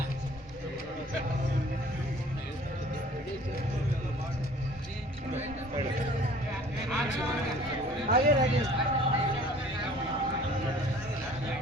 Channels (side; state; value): both; normal; correlation 0.51